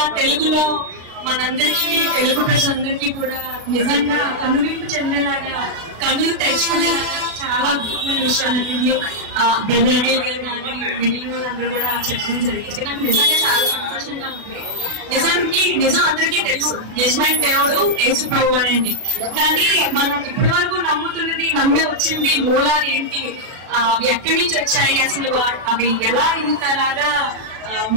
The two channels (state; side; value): late; left; 36 ms